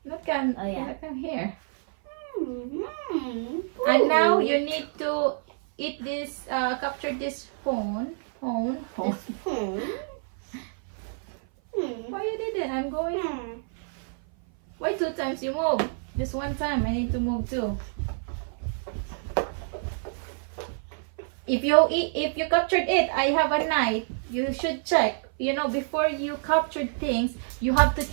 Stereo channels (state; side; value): silent; left; 56 dB below the other